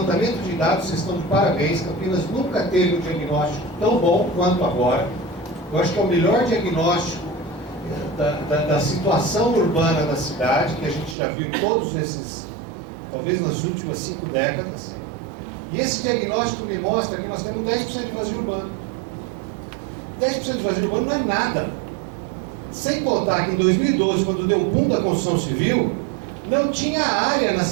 de dados, vocês estão de parabéns, Campinas nunca teve um diagnóstico tão bom quanto agora. Eu acho que é o melhor diagnóstico da situação urbana da cidade, que a gente já viu em todos esses, talvez nas últimas 5 décadas. E esse diagnóstico me mostra que nós temos 10% de vazio urbano. 10% de vazio urbano não é nada. Sem contar que em 2012, quando deu o boom da construção civil, não tinha área na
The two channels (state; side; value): drops out; left; at 11.2 s